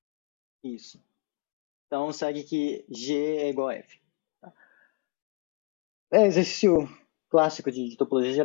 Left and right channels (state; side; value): quieter; right; 30.9 dB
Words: isso. É exercício clássico de topologia